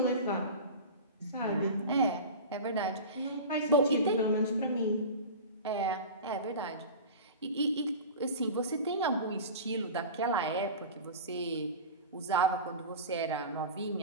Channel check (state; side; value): inverted; both; correlation -0.31